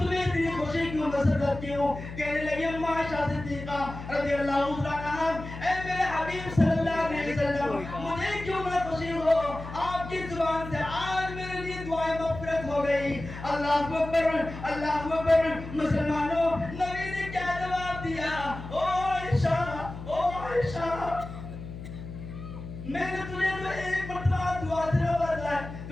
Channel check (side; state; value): left; noise; hum, 11 dB below the sound